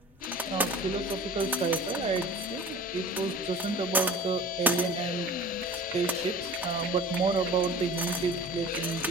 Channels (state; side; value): normal; both; correlation 0.41